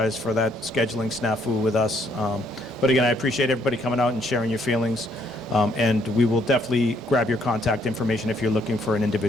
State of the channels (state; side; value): normal; both; correlation 0.69